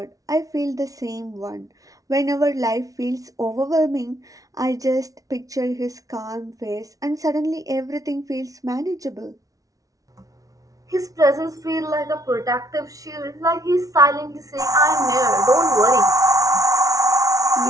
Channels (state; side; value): late; left; 0.17 ms